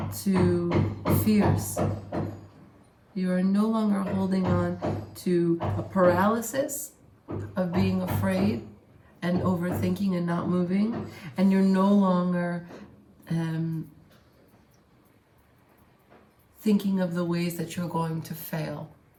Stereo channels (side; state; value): both; identical; correlation 1.00